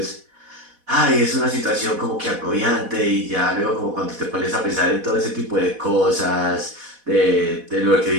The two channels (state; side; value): late; left; 4.1 ms